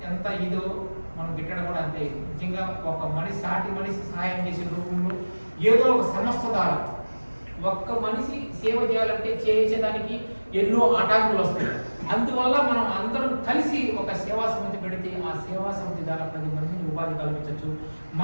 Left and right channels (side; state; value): both; inverted; correlation -1.00